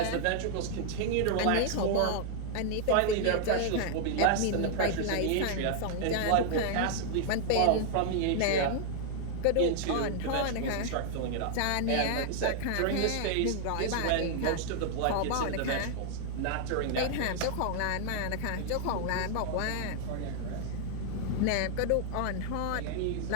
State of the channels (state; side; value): different; both; correlation 0.00